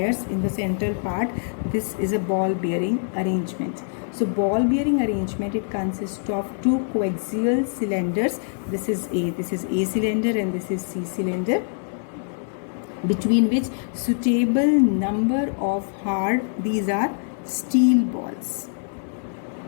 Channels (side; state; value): right; silent; digital silence